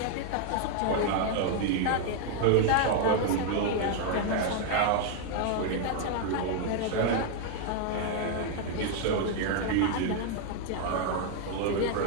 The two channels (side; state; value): both; different; correlation 0.00